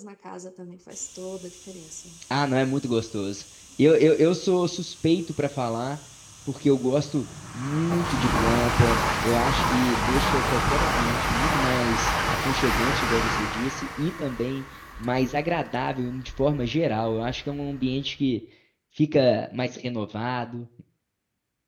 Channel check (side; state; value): both; identical; correlation 1.00